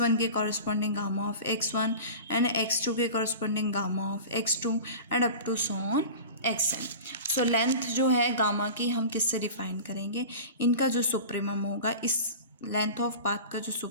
one के corresponding gamma of X one and X two के corresponding gamma of X two and up to so on x N. So length जो है gamma की हम किससे define करेंगे? इनका जो सुप्रीमम होगा, इस लेंथ ऑफ पाथ का जो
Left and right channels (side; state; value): both; inverted; correlation -0.35